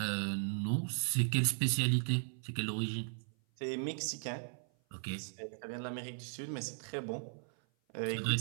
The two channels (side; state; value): left; silent; 53 dB below the other